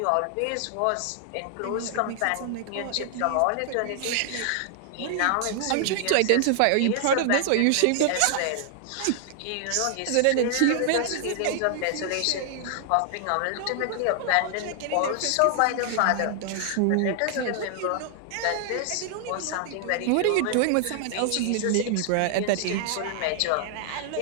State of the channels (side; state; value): both; different; correlation 0.00